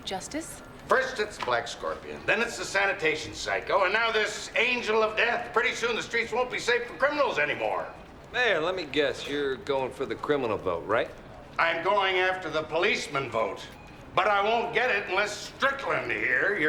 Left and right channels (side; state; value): both; identical; correlation 1.00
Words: justice? First it's Black Scorpion, then it's the Sanitation Psycho, and now this Angel of Death. Pretty soon the streets won't be safe for criminals anymore. Mayor, let me guess, you're going for the criminal vote, right? I'm going after the policeman vote, but I won't get it unless Strickland here,